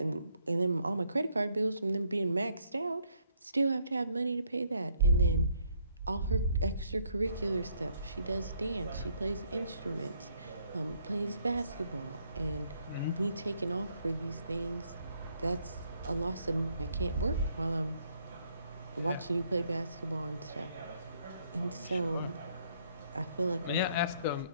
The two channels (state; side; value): inverted; both; correlation -0.69